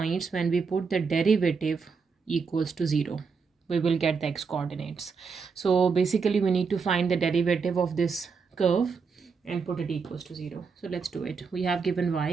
when we put the derivative equals to 0. We will get the x coordinates. So basically we need to find the derivative of this curve and put it equals to 0. So let's do it. We have given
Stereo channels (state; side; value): quieter; left; 5.3 dB